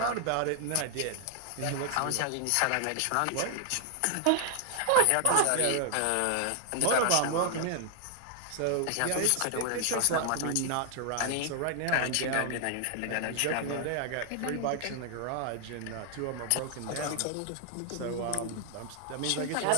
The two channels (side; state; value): both; different; correlation 0.00